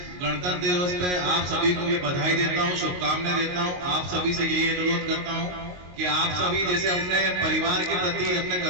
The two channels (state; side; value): late; left; 22 ms